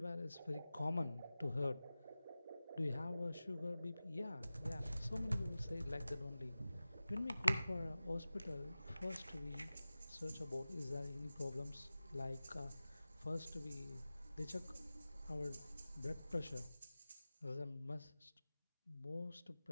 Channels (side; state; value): both; inverted; correlation -0.96